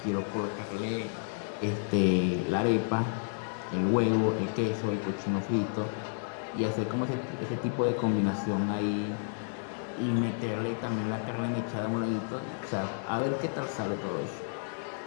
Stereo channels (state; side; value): silent; right; digital silence